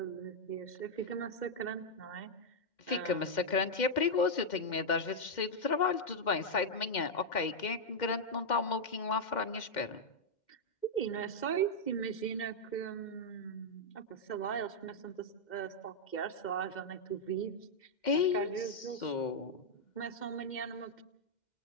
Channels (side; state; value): right; late; 2.1 ms